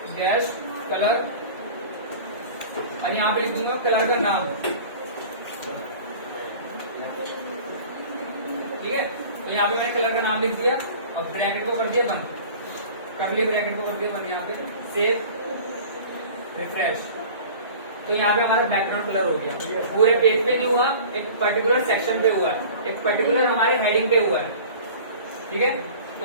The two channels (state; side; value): inverted; both; correlation -0.42